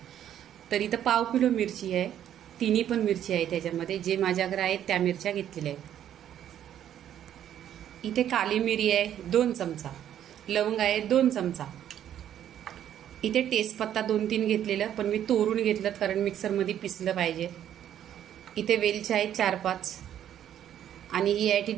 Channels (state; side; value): quieter; left; 10.6 dB